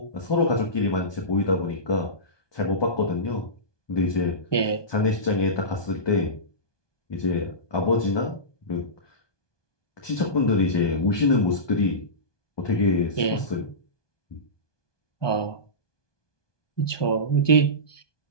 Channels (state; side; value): late; right; 1.2 ms